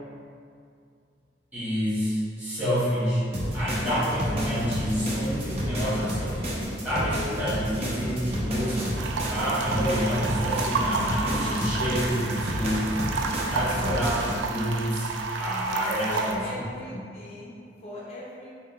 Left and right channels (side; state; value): both; normal; correlation 0.51